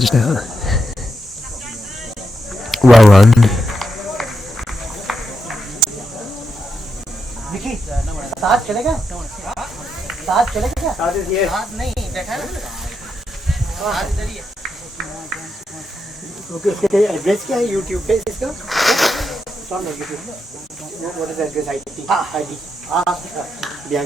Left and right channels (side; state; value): both; normal; correlation 0.84